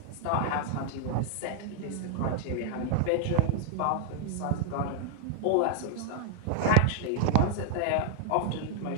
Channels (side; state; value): both; different; correlation 0.00